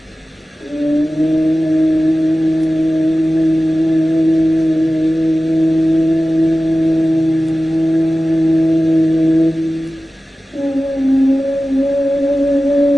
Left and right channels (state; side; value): normal; both; correlation 0.96